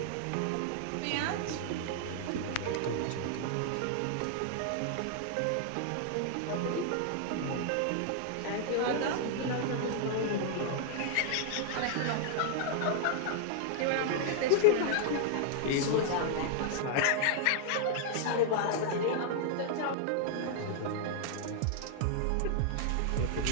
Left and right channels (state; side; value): different; both; correlation 0.00